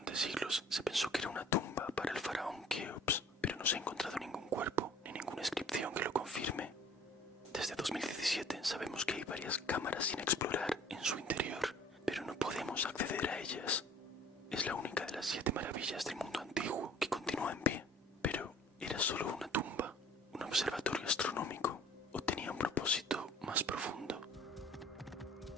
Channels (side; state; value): both; normal; correlation 0.51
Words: siglos se pensó que era una tumba para el faraón Keops, pero no se ha encontrado ningún cuerpo ni ninguna inscripción que lo confirme. Desde 2017 sabemos que hay varias cámaras sin explorar en su interior, pero no podemos acceder a ellas. Es la única de las 7 maravillas del mundo antiguo que continúa en pie, pero ¿era solo una tumba, un observatorio astronómico o tenía un propósito más profundo?